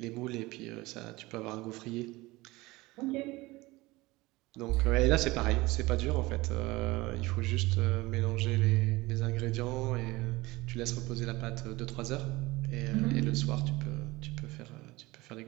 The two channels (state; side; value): quieter; left; 21.0 dB